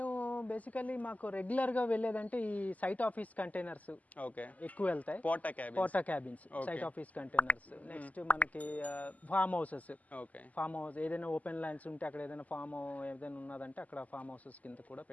బేసికల్లీ మాకు రెగ్యులర్ గా వెళ్ళేదంటే ఈ సైట్ ఆఫీస్ కంటైనర్స్ ఓకే ఎక్కువ వెళ్తాయి. Porta cabins, site office containers. Next మనకి ఫార్మ్ హౌసెస్. ఫార్మ్ హౌస్ ఏదైనా ఓపెన్ ల్యాండ్స్ ఉంటే అక్కడ ఏదైనా ఫార్మ్ ఏదైనా ఉన్నదంటే అక్కడ ఫార్మ్ హౌసెస్ కింద కూడా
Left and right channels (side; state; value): right; late; 0.076 ms